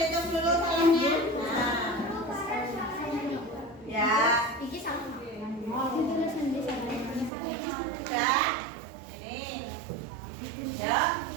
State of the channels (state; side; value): drops out; left; at 7.3 s